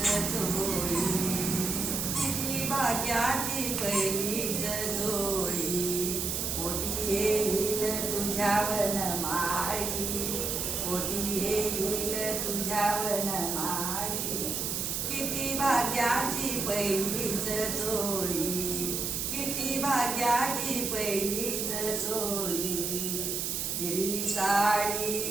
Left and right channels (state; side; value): noise; right; hiss, 1 dB below the sound